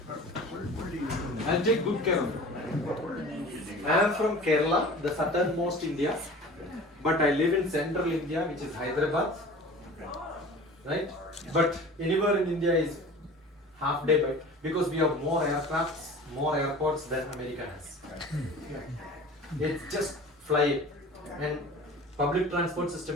I'll take good care of it. I am from Kerala, the southernmost India, but I live in central India, which is Hyderabad. Right? But anywhere in India is half day by because we have more aircrafts, more airports than America has. It's just fly and public transport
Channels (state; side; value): normal; both; correlation 0.41